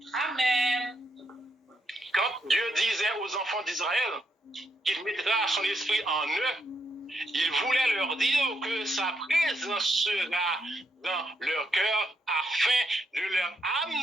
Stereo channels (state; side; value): normal; both; correlation 0.78